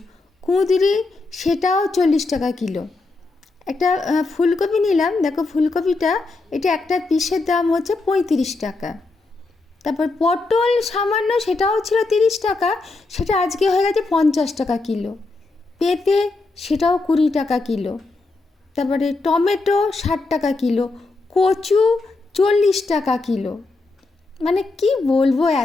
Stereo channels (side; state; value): right; quieter; 3.5 dB